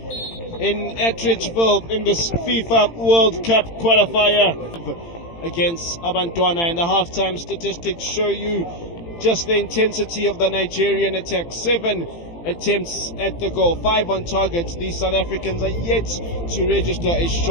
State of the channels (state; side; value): late; right; 18 ms